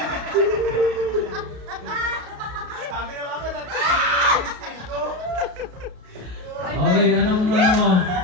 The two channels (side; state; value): left; late; 33 ms